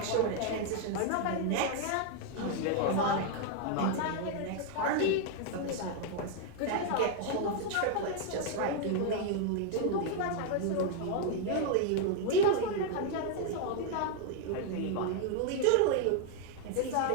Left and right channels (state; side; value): different; both; correlation 0.00